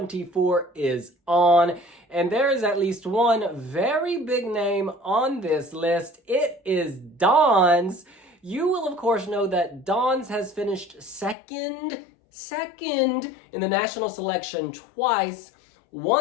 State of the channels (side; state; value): right; drops out; at 11.4 s